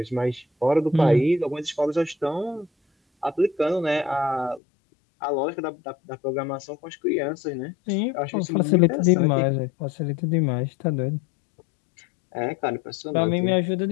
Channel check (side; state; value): right; drops out; at 4.6 s